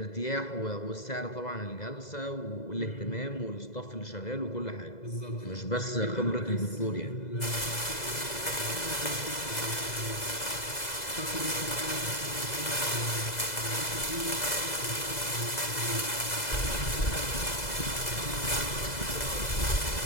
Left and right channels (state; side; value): late; right; 2.0 ms